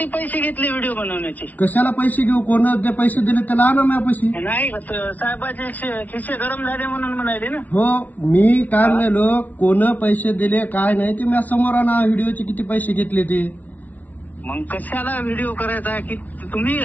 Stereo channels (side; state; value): right; late; 0.075 ms